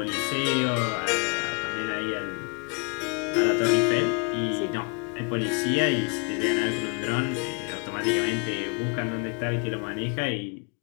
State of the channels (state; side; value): quieter; right; 35.3 dB